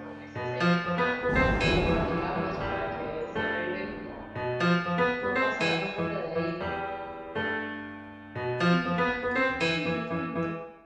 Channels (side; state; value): both; identical; correlation 1.00